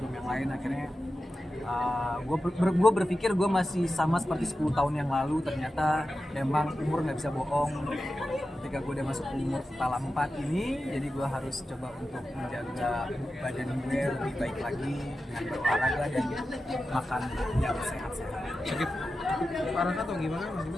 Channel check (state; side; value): normal; both; correlation 0.92